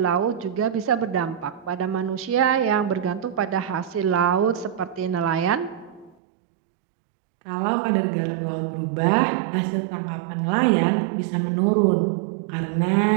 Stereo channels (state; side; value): drops out; left; at 6.2 s